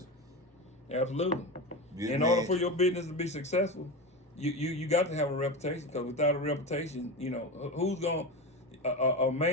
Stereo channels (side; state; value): both; normal; correlation 0.21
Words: Absolutely. In order for your business to be successful, you got to have a reputation, because without a reputation, who's going a